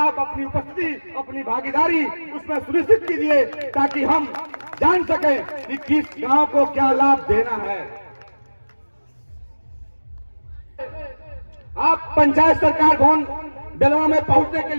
अपनी उपस्थिति, अपनी भागीदारी उसमें सुनिश्चित कीजिए, ताकि हम जान सके कि किस गांव को क्या लाभ देना है। आप पंचायत सरकार भवन बेलवा में पहुंचने के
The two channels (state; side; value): inverted; both; correlation -1.00